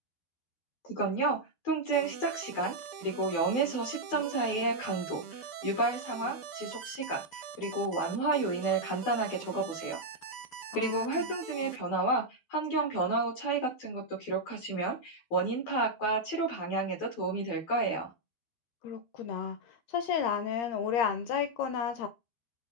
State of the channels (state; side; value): late; right; 12 ms